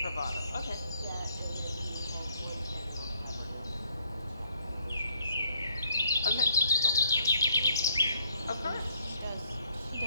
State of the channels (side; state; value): both; inverted; correlation -0.68